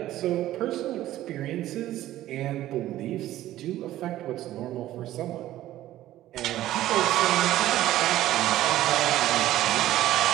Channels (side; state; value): left; quieter; 14.3 dB